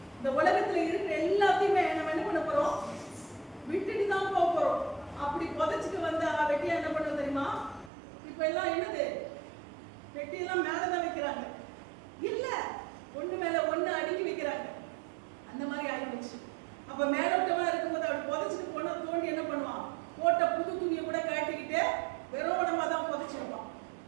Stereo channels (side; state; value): left; drops out; at 7.9 s